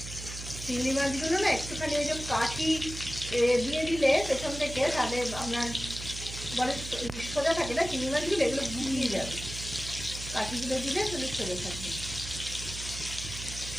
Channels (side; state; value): right; noise; hum, 10 dB below the sound